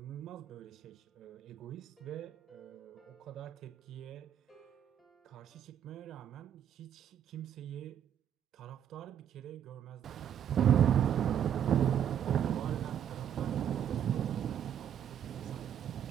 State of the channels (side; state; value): left; quieter; 9.5 dB